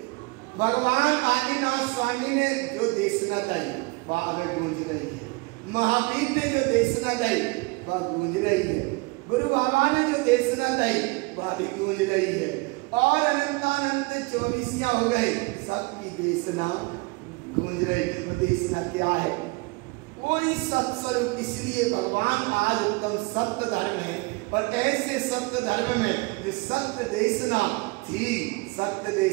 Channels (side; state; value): left; quieter; 26.6 dB